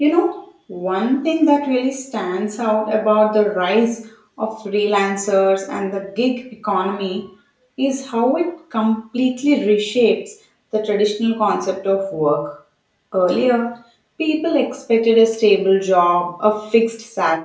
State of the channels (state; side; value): identical; both; correlation 1.00